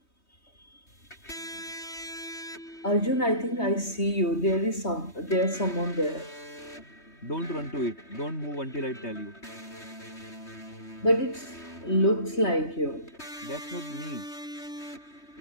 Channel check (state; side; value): late; right; 3.2 ms